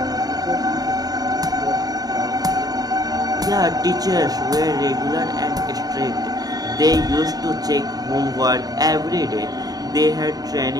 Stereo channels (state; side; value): late; left; 0.18 ms